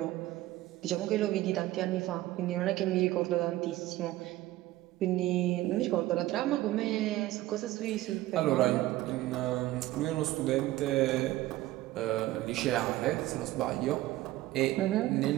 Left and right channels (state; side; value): quieter; left; 16.4 dB